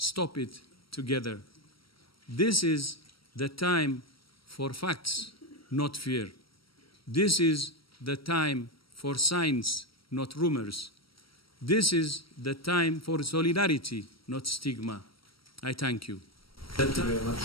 it together. This is the time for facts, not fear. This is the time for science, not rumors. This is the time for solidarity, not stigma. I thank you. Thank you very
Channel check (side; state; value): right; late; 0.75 ms